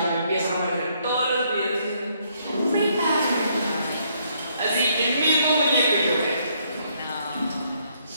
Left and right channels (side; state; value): both; inverted; correlation -0.70